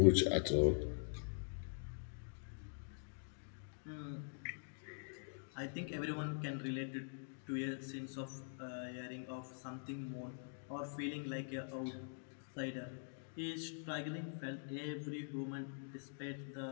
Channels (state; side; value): silent; right; digital silence